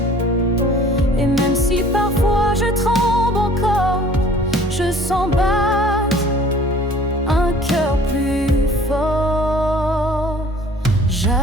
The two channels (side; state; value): both; normal; correlation 0.51